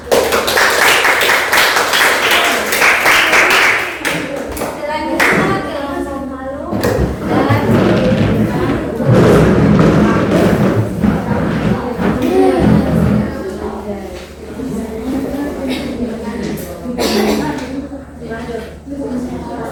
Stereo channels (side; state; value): both; identical; correlation 1.00